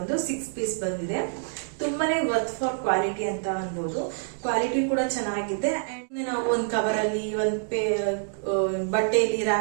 6 ಪೀಸ್ ಬಂದಿದೆ. ತುಂಬಾನೇ ವರ್ತ್ ಫಾರ್ ಕ್ವಾಲಿಟಿ ಅಂತ ಅನ್ಬೋದು. ಕ್ವಾಲಿಟಿ ಕೂಡ ಚೆನ್ನಾಗಿದೆ. ಅಂಡ್ ನಾವು ಒಂದು ಕವರ್ ಅಲ್ಲಿ ಒಂದು ಬಟ್ಟೆಯಲ್ಲಿ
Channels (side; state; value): left; silent; digital silence